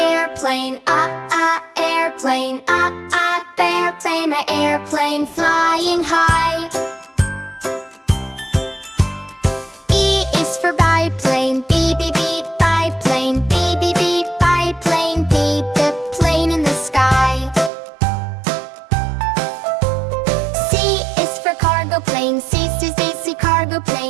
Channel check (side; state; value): left; drops out; at 17.7 s